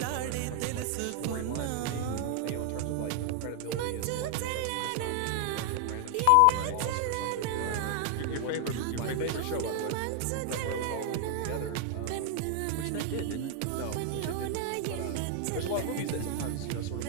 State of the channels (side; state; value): both; different; correlation 0.00